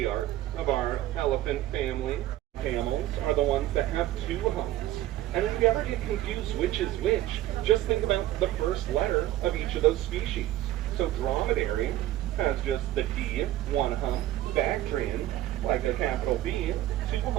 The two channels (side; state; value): left; quieter; 14.4 dB